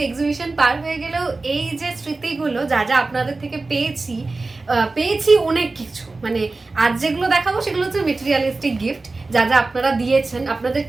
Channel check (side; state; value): left; quieter; 3.5 dB